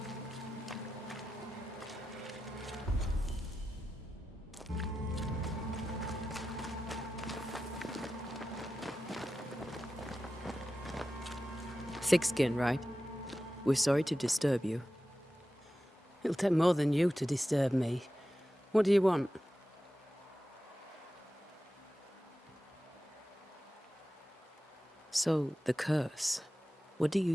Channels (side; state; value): both; normal; correlation 0.92